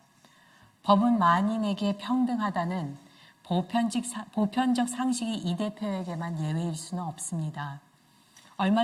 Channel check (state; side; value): identical; both; correlation 1.00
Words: 법은 만인에게 평등하다는 보편적 상식이 이 대표에게만 예외일 수는 없습니다.